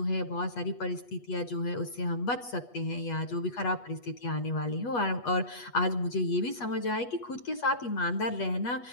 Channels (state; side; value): late; right; 8.3 ms